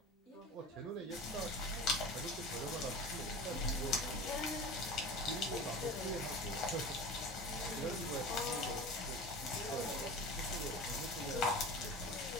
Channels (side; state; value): both; normal; correlation 0.33